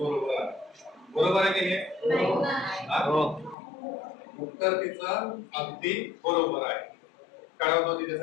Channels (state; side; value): drops out; right; at 3.6 s